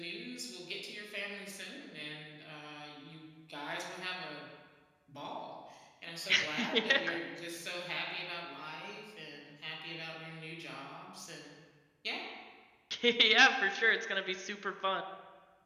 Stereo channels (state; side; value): identical; both; correlation 1.00